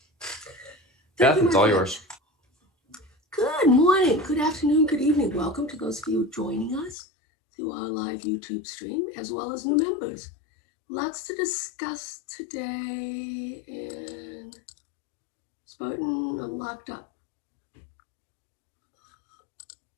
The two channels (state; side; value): drops out; right; at 7.0 s